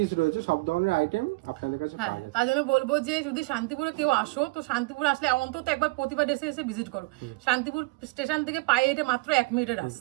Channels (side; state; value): left; quieter; 25.1 dB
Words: রয়েছে সব ধরনের আইটেম আপনাদের কাছে হ্যাঁ পাওয়া যায়। তার জন্য বলবো যে যদি শান্তিপুরে কেউ আসো, তো শান্তিপুর আসলে অন্তত একবার প্রতিবার এসে ভিজিট করো। শান্তিপুর স্টেশন থেকে পায়ে হেঁটে মাত্র 1 মিনিটের